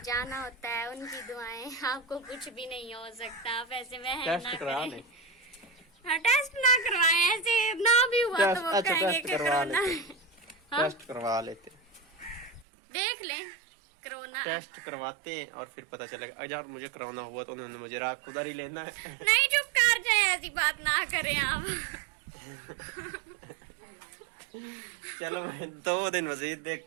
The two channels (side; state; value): left; drops out; at 12.7 s